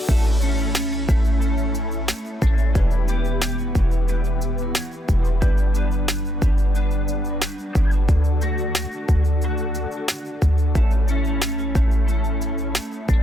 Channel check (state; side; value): normal; both; correlation 0.78